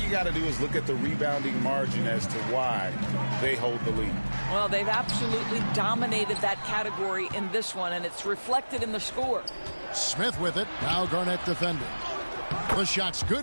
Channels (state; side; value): inverted; both; correlation -1.00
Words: got to do is look at the rebounding margin as to why they hold the lead. Well, they've absolutely dominated that category in this one, and it's reflected in the score. Smith with it. Now Garnett defending. The shot's